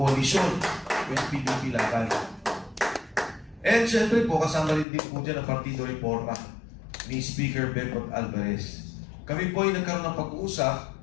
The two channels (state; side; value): drops out; right; at 4.9 s